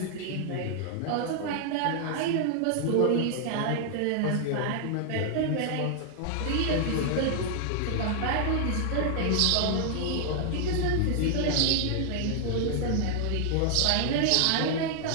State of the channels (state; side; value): different; both; correlation 0.00